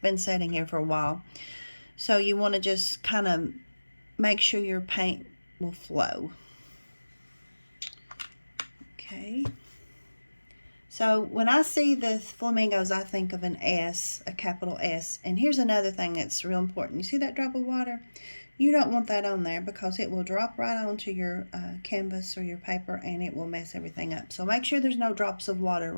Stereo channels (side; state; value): both; inverted; correlation -1.00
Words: sitting here for a while. So you want to just kind of make sure your paint will flow. Okay. So when I see the flamingos, I think of an S, a capital S. And here's another thing that's real important. You see that drop of water? You don't want that on there because it will drop right onto your canvas or your paper, and it will mess everything up. So make sure there's no drops of water